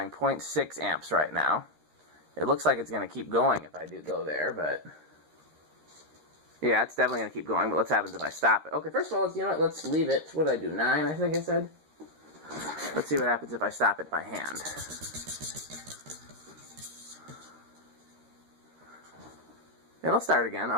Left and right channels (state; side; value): late; left; 13 ms